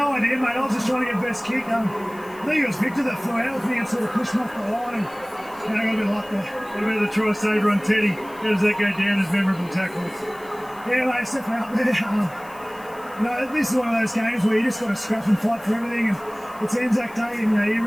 idea, mate. I was just trying to get best kick. I think it was Victor that flew out with me and sort of pushed me off the line, and I got a bit of luck there. What about the try saver on Teddy? How does that go down as memorable tackles? Yeah, mate, stepping out there. This is one of those games where you just got to scrap and fight for everything, and it's Anzac Day, and you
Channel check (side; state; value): left; noise; hiss, 24 dB below the sound